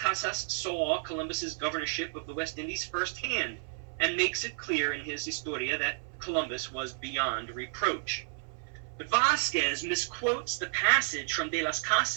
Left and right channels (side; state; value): left; silent; 57 dB below the other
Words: saw Columbus's governorship of the West Indies firsthand, and makes it clear in his Historia that Columbus was beyond reproach. But Vasquez misquotes the passage from De las